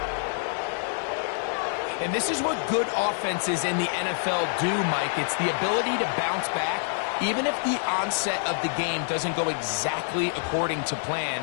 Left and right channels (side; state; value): right; silent; 60 dB below the other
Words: And this is what good offenses in the NFL do, Mike. It's the ability to bounce back, even if the onset of the game doesn't go exactly according to